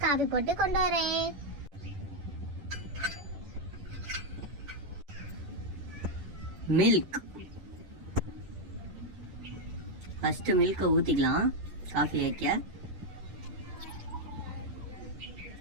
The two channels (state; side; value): late; left; 10 ms